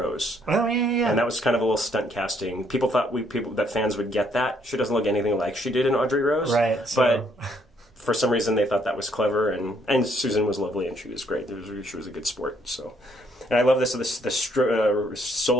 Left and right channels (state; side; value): normal; both; correlation 0.69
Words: Oh, yeah. And that was kind of a little stunt casting. People thought that fans would get that. She doesn't look anything like she did in Audrey Rose. Right. But for some reason they thought that was clever. And Susan was lovely and she was great. She was a good sport. So. And I love the